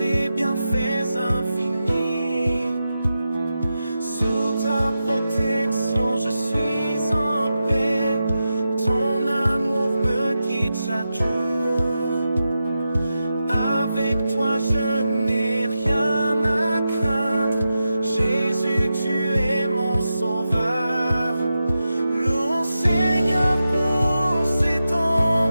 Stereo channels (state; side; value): inverted; both; correlation -0.90